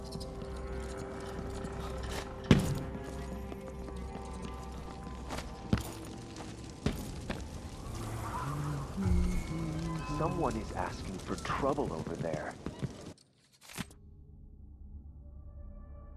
Someone is asking for trouble over there.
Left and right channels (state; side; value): identical; both; correlation 1.00